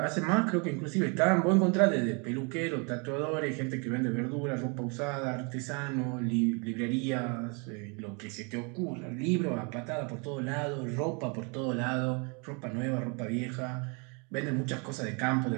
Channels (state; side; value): quieter; left; 33.7 dB